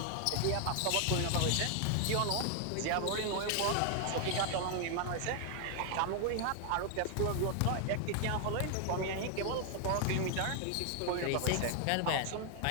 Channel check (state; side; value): different; both; correlation 0.00